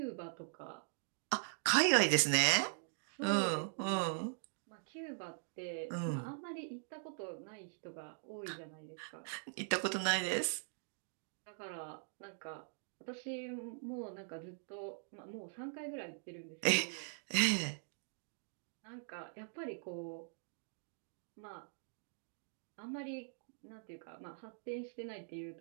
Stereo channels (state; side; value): silent; left; digital silence